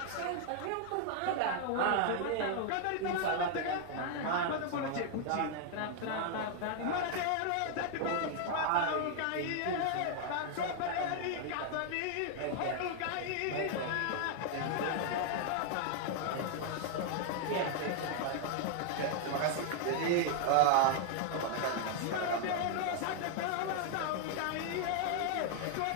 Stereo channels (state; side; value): different; both; correlation 0.00